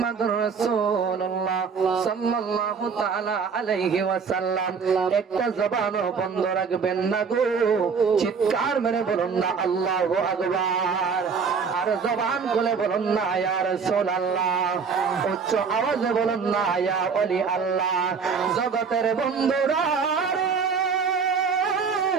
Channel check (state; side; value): quieter; left; 5.7 dB